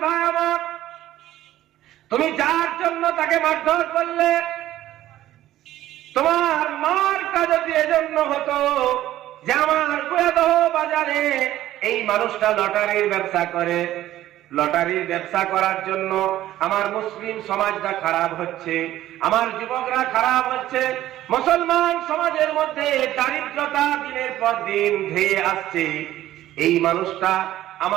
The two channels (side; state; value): left; quieter; 13.9 dB